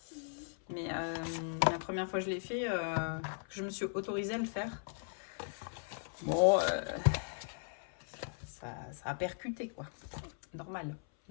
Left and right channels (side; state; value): right; silent; 53 dB below the other